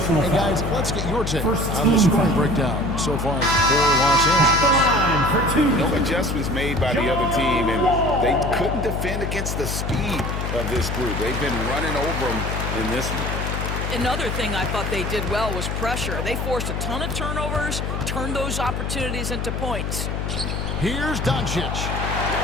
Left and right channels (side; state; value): left; noise; hum, 2 dB below the sound